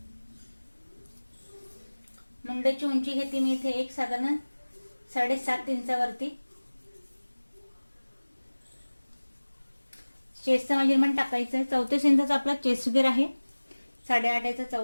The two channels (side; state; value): both; inverted; correlation -1.00